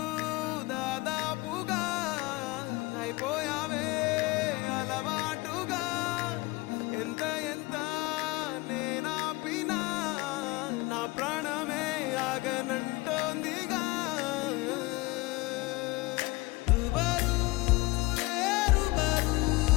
దాదాపుగా అయిపోయావే అలవాటుగా ఎంత ఎంత నేనాపినా నా ప్రాణమే ఆగనంటోందిగా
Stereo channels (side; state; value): right; quieter; 22.4 dB